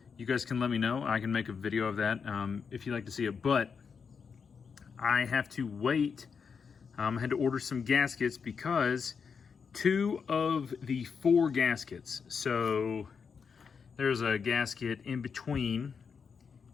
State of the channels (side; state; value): right; quieter; 6.0 dB